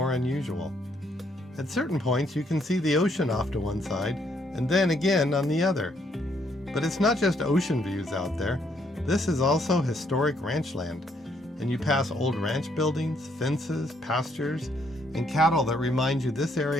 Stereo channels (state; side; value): normal; both; correlation 0.71